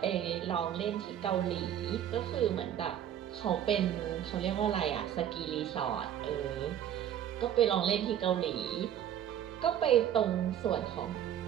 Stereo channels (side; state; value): left; quieter; 10.4 dB